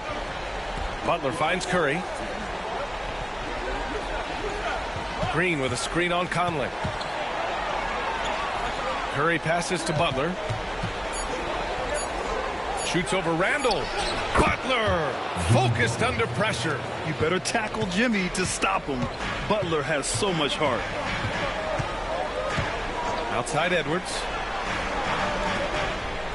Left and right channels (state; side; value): identical; both; correlation 1.00